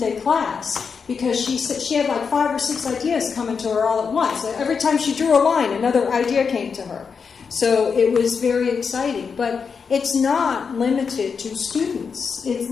class because she said she had like 5 or 6 ideas coming to her all at once. Every time she drew a line, another idea came to her. So it was very exciting. But it's not limited to students.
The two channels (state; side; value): quieter; right; 5.8 dB